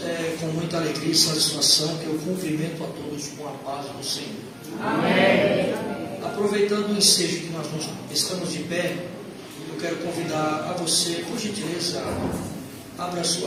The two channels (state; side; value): identical; both; correlation 1.00